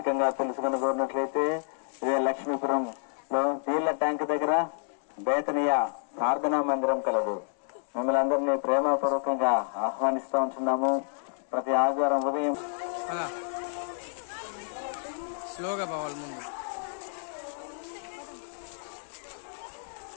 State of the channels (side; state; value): right; silent; 58 dB below the other